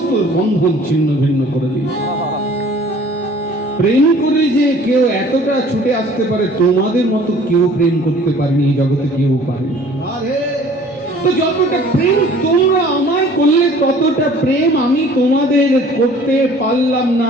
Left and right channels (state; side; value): normal; both; correlation 0.51